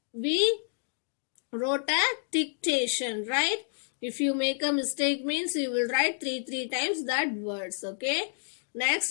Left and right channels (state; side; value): silent; right; digital silence